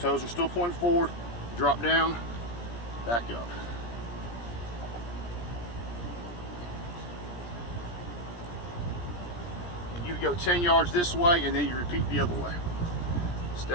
are still pointing forward. Drop down, back up. And you go 10 yards this way and then you repeat the other way.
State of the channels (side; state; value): right; late; 17 ms